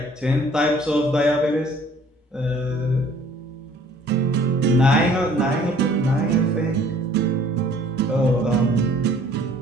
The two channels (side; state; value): both; normal; correlation 0.55